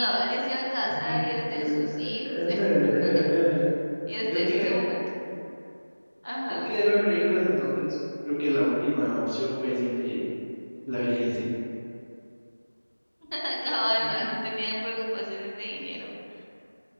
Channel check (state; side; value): inverted; both; correlation -1.00